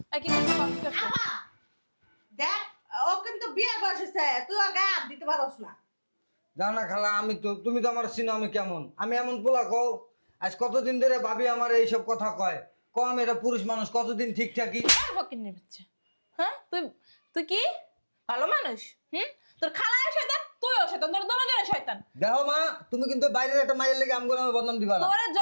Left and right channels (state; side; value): inverted; both; correlation -1.00